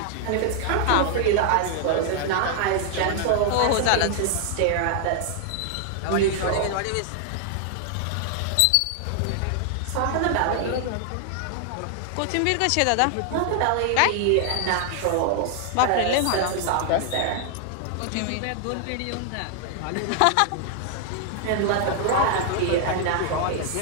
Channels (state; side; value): different; both; correlation 0.00